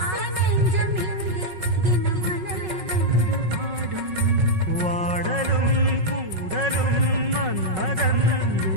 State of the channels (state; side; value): late; left; 5.4 ms